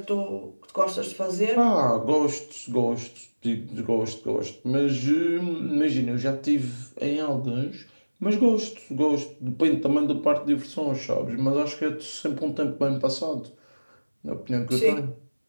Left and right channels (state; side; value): inverted; both; correlation -1.00